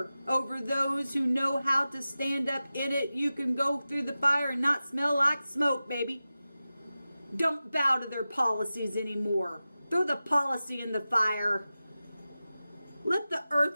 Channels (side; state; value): both; inverted; correlation -0.95